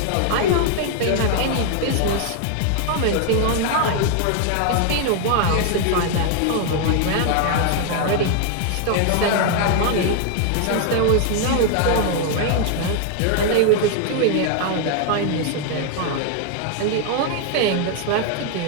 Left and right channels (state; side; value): different; both; correlation 0.00